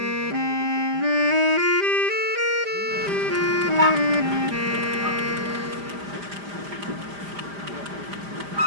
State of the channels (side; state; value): left; late; 5.0 ms